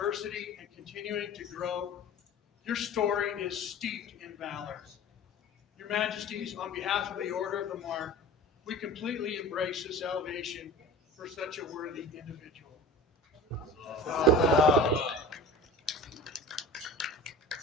and continuing to grow, your story is steeped in valor. Your Majesties, on behalf of the Order of the Mark, we completely embrace this elevation for such a worthy individual.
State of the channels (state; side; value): normal; both; correlation 0.38